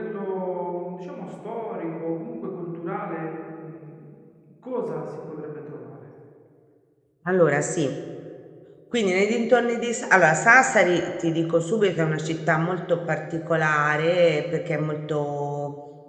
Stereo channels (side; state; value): both; identical; correlation 1.00